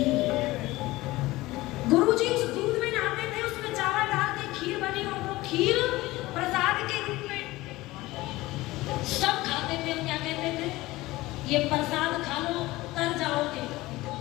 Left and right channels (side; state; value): right; quieter; 19.0 dB